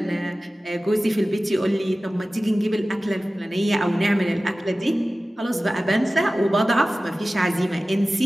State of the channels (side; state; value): both; normal; correlation 0.96